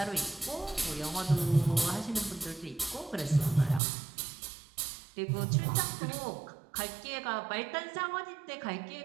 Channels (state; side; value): drops out; left; at 3.8 s